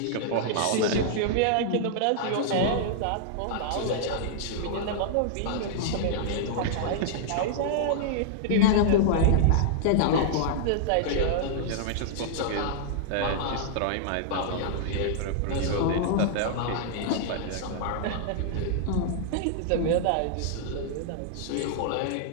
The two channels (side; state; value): both; different; correlation -0.01